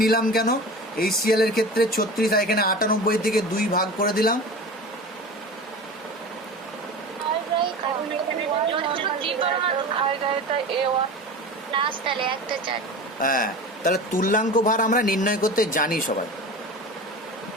নিলাম কেন? HCl এর ক্ষেত্রে 36, আর এখানে 98 থেকে 2 ভাগ করে দিলাম। হ্যাঁ, তাহলে তুল্যাঙ্ক ভার আমরা নির্ণয় করতে জানি সবাই।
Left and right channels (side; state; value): both; normal; correlation 0.33